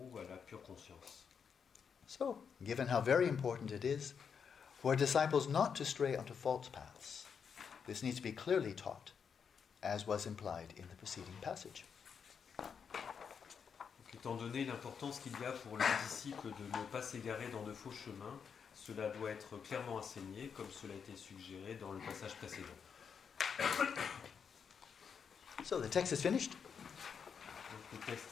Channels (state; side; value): quieter; right; 6.7 dB